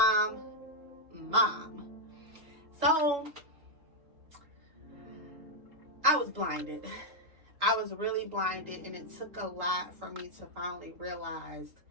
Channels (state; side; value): late; left; 3.8 ms